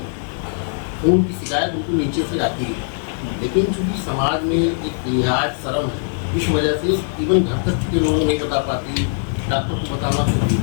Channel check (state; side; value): silent; right; digital silence